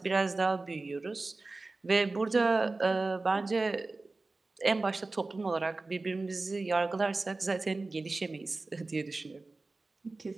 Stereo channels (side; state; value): left; quieter; 3.4 dB